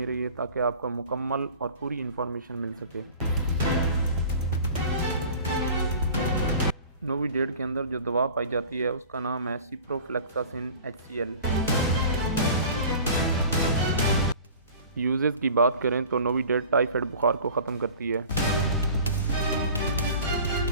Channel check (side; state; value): both; inverted; correlation -0.43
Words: रहिए ताकि आपको मुकम्मल और पूरी इन्फॉर्मेशन मिल सके। नोविडेट के अंदर जो दवा पाई जाती है उसका नाम है सिप्रोफ्लेक्सासिन HCl। यूजेस की बात करें तो नोविडेट टाइफाइड बुखार को ख़त्म करती है,